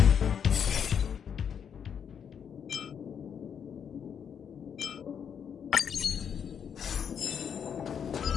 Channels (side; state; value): right; quieter; 7.7 dB